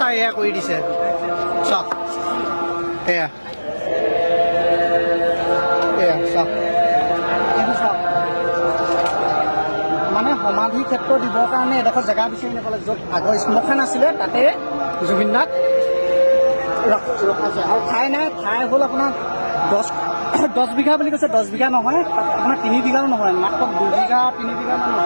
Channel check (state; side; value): inverted; both; correlation -1.00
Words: এয়া কৰি দিছে চাওক এয়া এয়া চাওক এইটো চাওক মানে সমাধি ক্ষেত্ৰ দিবৰ কাৰণে এডোখৰ জেগা বিচাৰি নাপালে য'ত আগৰ শ্মশান আছিলে তাতে জুবিন দাক ৰখাইছে আৰু ঠাই নাই ঠাই হ'ল আপোনাৰ 10 বিঘা বুলি কৈছে 10 বিঘা নহয় আপোনাৰ 3 বিঘাও নহয় মাত্ৰ 2 বিঘা 3 বিঘামান